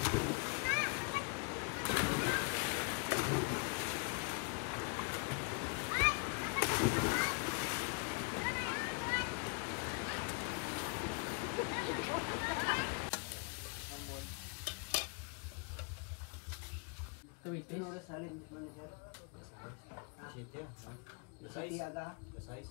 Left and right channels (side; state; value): right; quieter; 36.7 dB